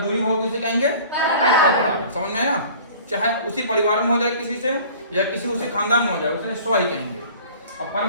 होगी उसे कहेंगे परपरागण। समझ में आया? चाहे उसी परिवार में हो जाए किसी से या किसी उसी खानदान में हो जाए उसे स्व ही कहेंगे। अब पर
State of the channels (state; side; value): inverted; both; correlation -0.46